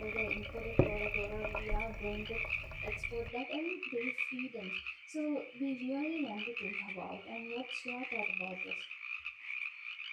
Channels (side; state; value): both; identical; correlation 1.00